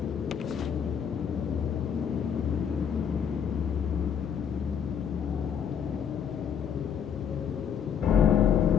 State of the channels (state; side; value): quieter; right; 7.9 dB